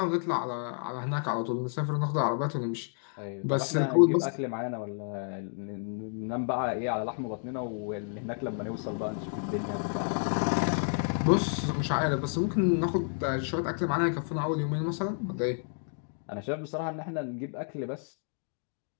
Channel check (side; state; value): right; silent; 57 dB below the other